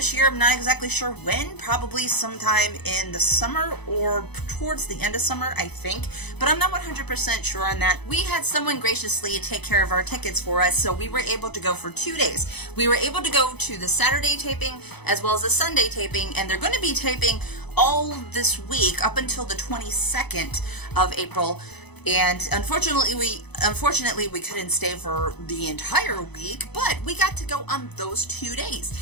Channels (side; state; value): right; late; 0.99 ms